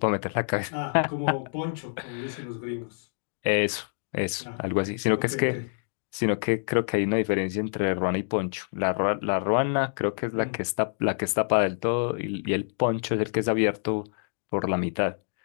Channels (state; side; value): silent; right; digital silence